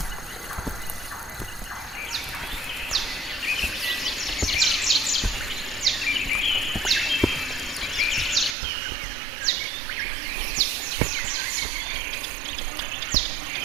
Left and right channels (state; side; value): drops out; left; at 8.6 s